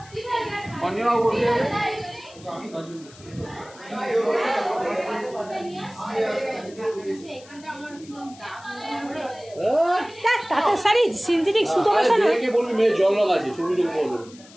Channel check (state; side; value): noise; left; hiss, 22 dB below the sound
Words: অঞ্জনা বলছে তাঁতের শাড়ি সিনথেটিক সুতো মেশানো, বলবি মেয়ে জল লাগাচ্ছে শুরু বলবো